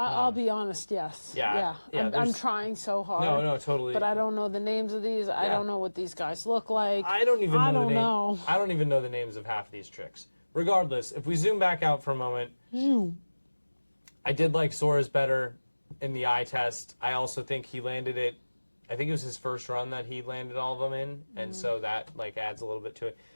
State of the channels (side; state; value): both; inverted; correlation -1.00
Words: be honest, yes. Yeah, I'm trying so hard. No, totally. But I don't know the names of these. I don't know what these guys look like. I don't even know. I I don't even know the names of half these tricks. Regardless, if we zoom back out for a moment, I did like Sora's better in the eye test. I also think he landed it, I think it was his first run that he landed all of them in, and so that like adds a little bit to it.